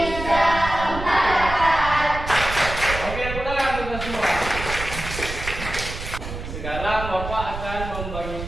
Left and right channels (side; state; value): right; noise; rumble, 8 dB below the sound